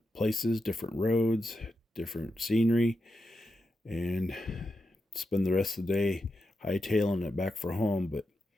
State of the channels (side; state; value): both; normal; correlation 0.88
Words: places, different roads, different scenery, and spend the rest of the day hightailing it back for home. But